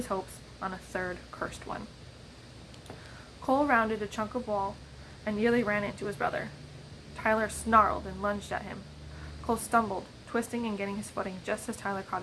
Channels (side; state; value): both; identical; correlation 1.00